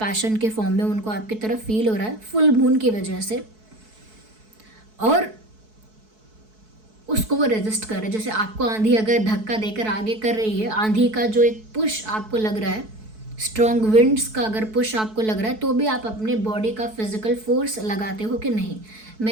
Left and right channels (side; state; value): left; late; 4.6 ms